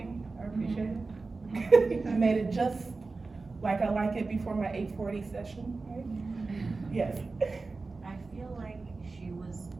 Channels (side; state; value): left; quieter; 3.8 dB